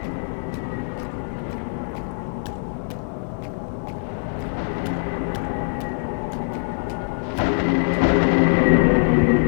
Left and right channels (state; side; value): silent; right; 63 dB below the other